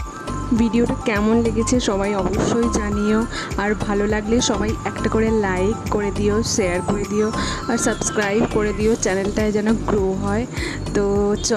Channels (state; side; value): identical; both; correlation 1.00